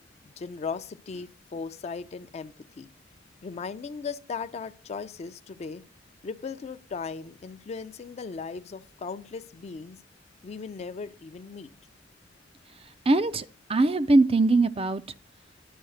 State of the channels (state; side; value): normal; both; correlation 0.75